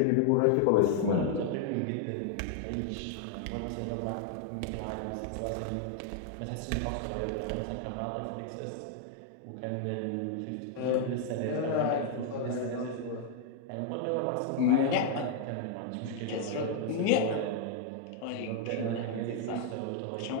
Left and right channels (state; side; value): different; both; correlation 0.00